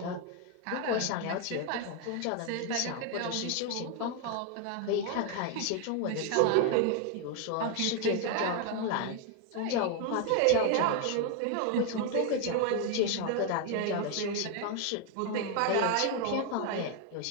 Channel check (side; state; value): both; different; correlation 0.01